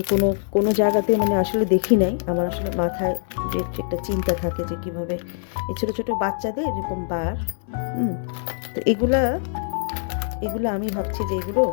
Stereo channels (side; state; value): right; silent; 63 dB below the other